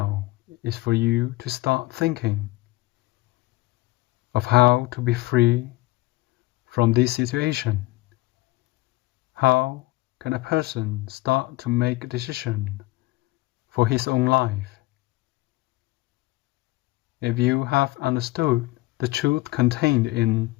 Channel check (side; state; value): right; quieter; 20.7 dB